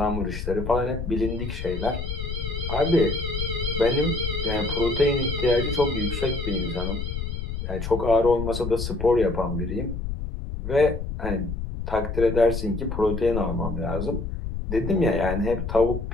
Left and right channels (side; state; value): left; noise; rumble, 5 dB below the sound